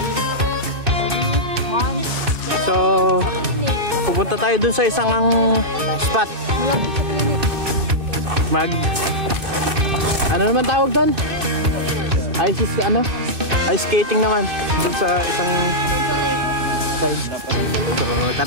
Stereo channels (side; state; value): left; late; 2.6 ms